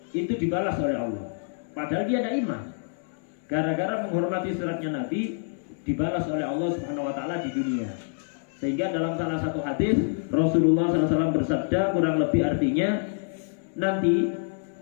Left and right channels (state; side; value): silent; right; 60 dB below the other